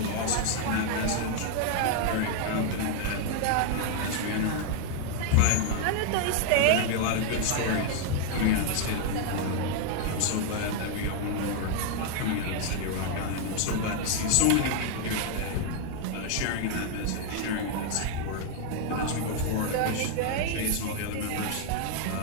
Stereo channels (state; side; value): different; both; correlation 0.00